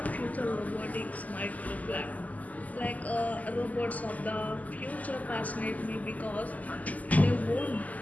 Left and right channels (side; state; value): right; late; 0.077 ms